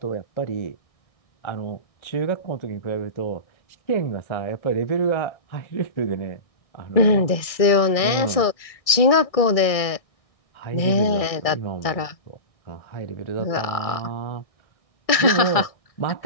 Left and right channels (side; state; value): right; late; 1.6 ms